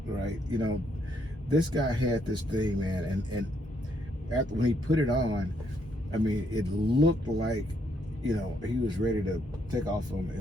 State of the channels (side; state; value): both; normal; correlation 0.73